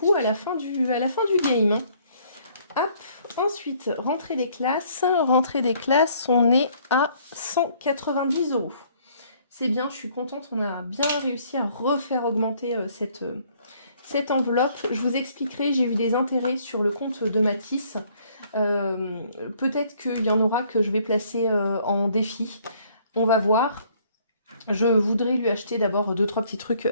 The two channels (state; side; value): inverted; both; correlation -0.62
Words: à la fin du game. Hein. Hop. Ensuite, rentrée des classes. Rentrée des classes, on est à 190 €. C'est bien, je suis contente. On a bien réussi à refaire augmenter cette enveloppe. Je vous expliquerai, j'ai eu des intérêts sur le compte de Mathis. Peut-être qu'il y en aura que je vais placer en défi. On va voir. Je voudrais lui acheter d'abord 2-3 petits